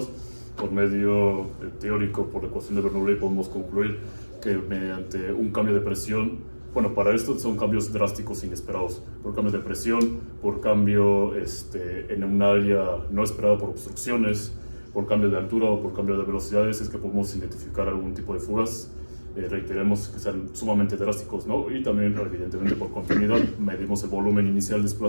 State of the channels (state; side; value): inverted; both; correlation -1.00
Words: Por medio teórico, por la ecuación de Bernoulli, podemos concluir que mediante un cambio de presión, bueno, para esto son cambios drásticos inesperados, por cambio de presión, por cambio en un área no esperada por obstrucciones, por cambio de altura o por cambio de velocidades, es que podemos identificar algún tipo de fugas. Reiteremos que sean sumamente drásticos, ¿no? Y también, evidentemente, por continuidad, medimos el volumen inicial